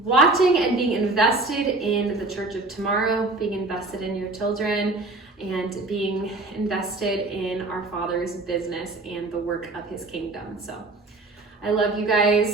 and being invested in the Church of Tomorrow, being invested in your children, and being invested in our Father's business and the work of His kingdom. So I love you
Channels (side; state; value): left; quieter; 3.1 dB